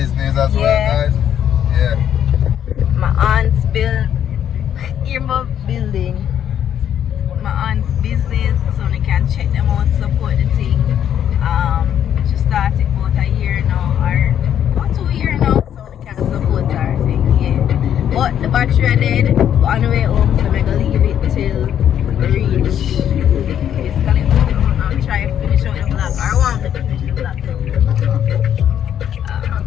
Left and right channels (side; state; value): right; quieter; 9.7 dB